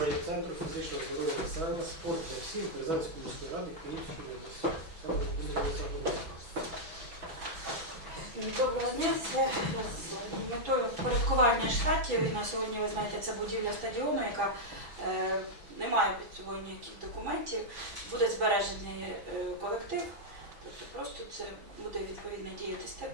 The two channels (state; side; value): late; left; 6.1 ms